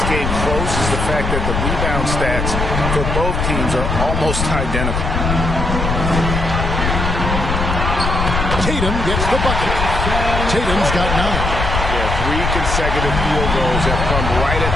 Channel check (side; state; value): left; noise; rumble, 2 dB below the sound